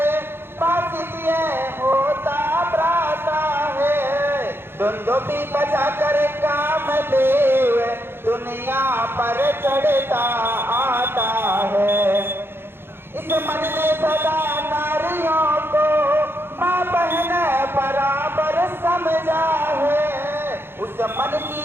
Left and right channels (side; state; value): left; late; 0.11 ms